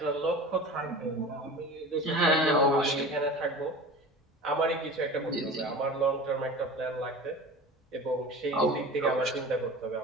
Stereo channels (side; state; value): both; normal; correlation 0.36